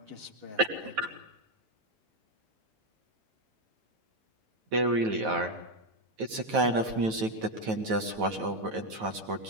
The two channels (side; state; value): left; late; 9.2 ms